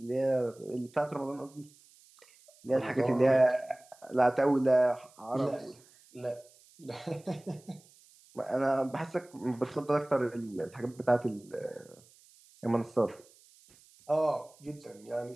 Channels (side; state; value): right; noise; hiss, 27 dB below the sound